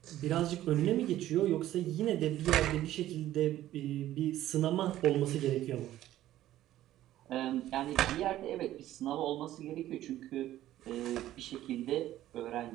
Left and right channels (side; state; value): left; quieter; 13.7 dB